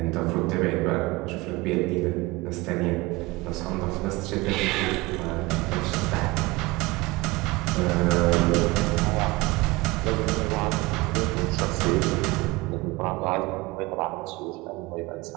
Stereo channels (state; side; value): quieter; left; 22.2 dB